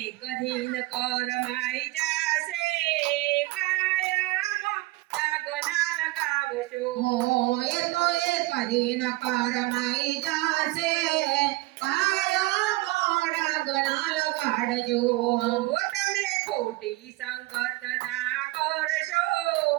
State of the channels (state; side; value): quieter; left; 20.6 dB